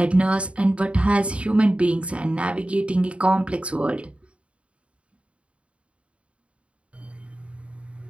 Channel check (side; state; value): left; late; 0.061 ms